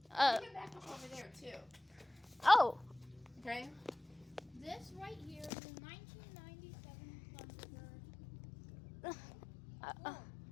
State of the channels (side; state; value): right; drops out; at 5.5 s